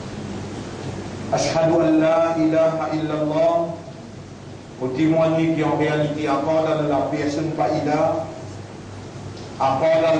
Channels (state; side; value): identical; both; correlation 1.00